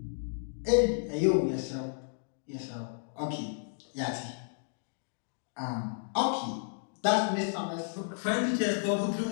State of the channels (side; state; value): right; silent; digital silence